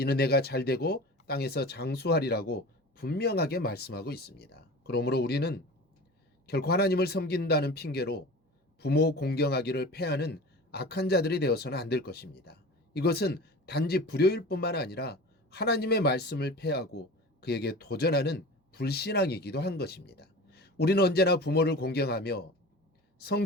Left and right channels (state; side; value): normal; both; correlation 0.36